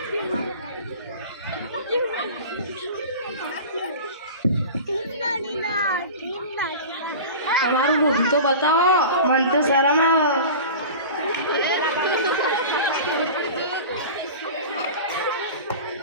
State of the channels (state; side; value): inverted; both; correlation -0.35